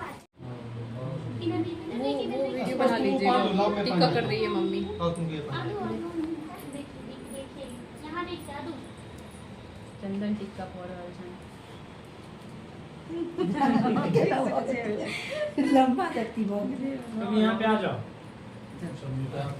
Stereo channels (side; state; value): both; identical; correlation 1.00